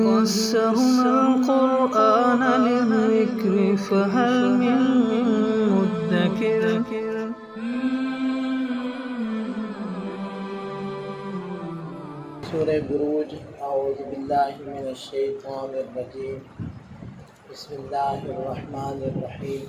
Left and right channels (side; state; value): both; identical; correlation 1.00